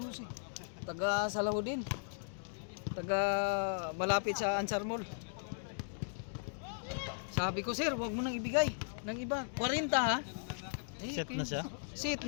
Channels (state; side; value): silent; right; digital silence